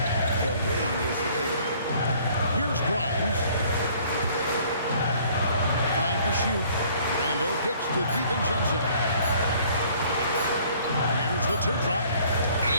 The ring is the thing. Here's Grimes. 5 to shoot. Randall kicks to DiVincenzo. Here's the teardrop.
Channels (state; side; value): inverted; both; correlation -0.57